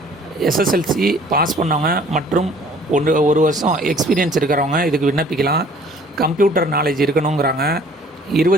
SSLC பாஸ் பண்ணவங்க மற்றும் 1 வருஷம் எக்ஸ்பீரியன்ஸ் இருக்கிறவங்க இதுக்கு விண்ணப்பிக்கலாம். Computer knowledge இருக்கணுங்கிறாங்க.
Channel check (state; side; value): normal; both; correlation 0.54